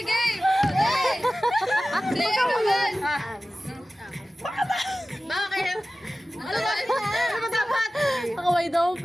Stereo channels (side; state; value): both; normal; correlation 0.96